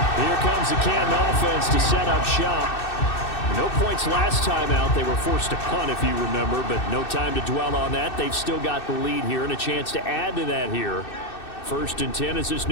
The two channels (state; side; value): late; right; 2.6 ms